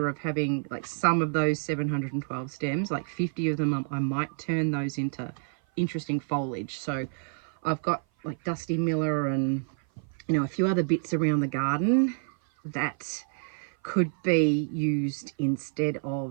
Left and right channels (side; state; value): left; silent; 56 dB below the other